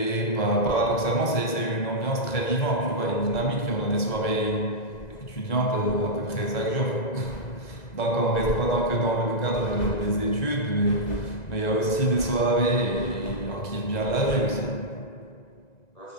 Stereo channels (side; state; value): right; late; 2.0 ms